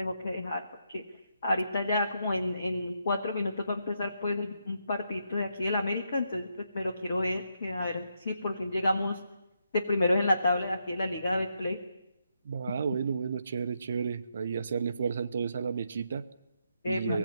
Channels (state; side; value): inverted; both; correlation -0.80